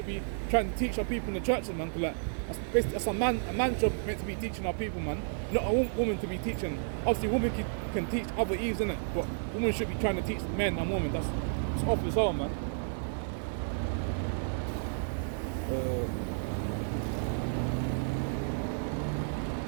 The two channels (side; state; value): left; silent; digital silence